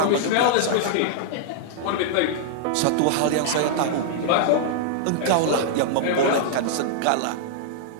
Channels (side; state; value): both; different; correlation -0.01